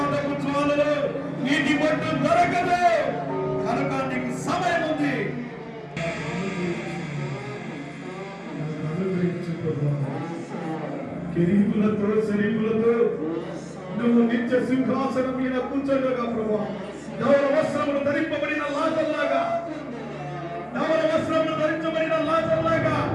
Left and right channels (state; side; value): identical; both; correlation 1.00